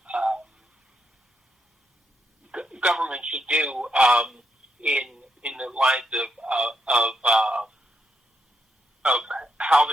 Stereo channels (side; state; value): both; normal; correlation 0.80